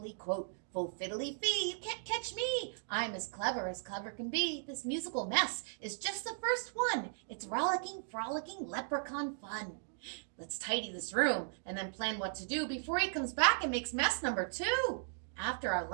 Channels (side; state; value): left; silent; digital silence